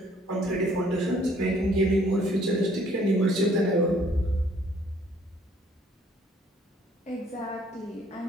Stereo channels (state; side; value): normal; both; correlation 0.61